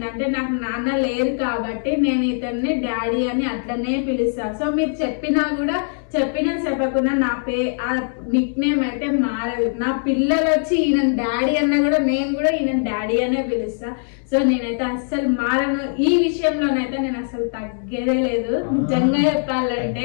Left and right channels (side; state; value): right; silent; digital silence